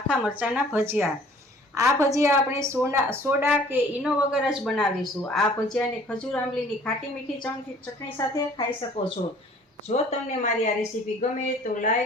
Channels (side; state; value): both; normal; correlation 0.53